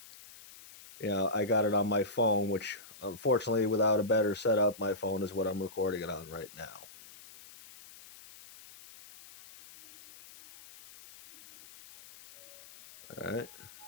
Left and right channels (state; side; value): noise; left; hiss, 19 dB below the sound